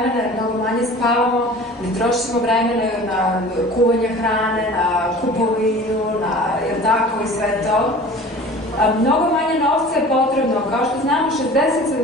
mnogo manje spavamo, ne trošimo vremena na kuvanje hrane, na kupovinu, na tako i sve to. Mnogo manje novca je potrebno, kao što znamo 60-70%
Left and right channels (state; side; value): normal; both; correlation 0.42